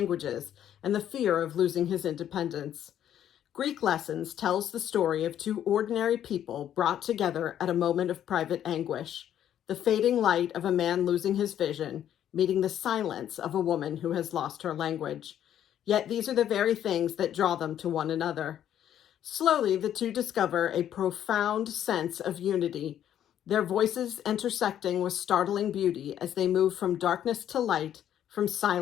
and the fear of losing his independence. Greek Lessons tells the story of two ordinary people brought together at a moment of private anguish, the fading light of a man losing his vision, meeting the silence of a woman who has lost her language. Yet these are the very things that draw them to one another. Slowly, the two discover a profound sense of unity, their voices intersecting with startling beauty as they move from darkness to light, from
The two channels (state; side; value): quieter; right; 10.5 dB